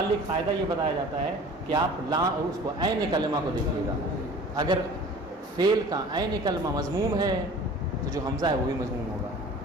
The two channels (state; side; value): normal; both; correlation 0.44